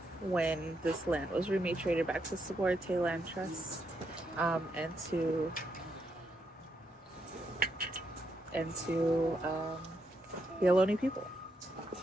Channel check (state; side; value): normal; both; correlation 0.80